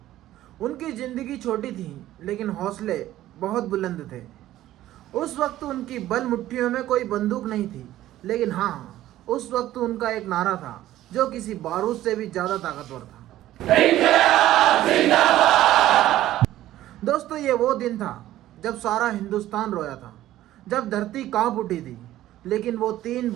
उनकी जिंदगी छोटी थी लेकिन हौसले बहुत बुलंद थे। उस वक्त उनकी बल मुट्ठियों में कोई बंदूक नहीं थी, लेकिन हाँ, उस वक्त उनका एक नारा था जो किसी बारूद से भी ज्यादा ताकतवर था। दोस्तों, ये वो दिन था जब सारा हिंदुस्तान रोया था, जब धरती कांप उठी थी, लेकिन वो तीन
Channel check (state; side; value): quieter; left; 14.1 dB